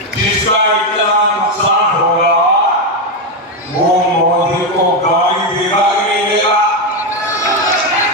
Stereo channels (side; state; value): both; normal; correlation 0.07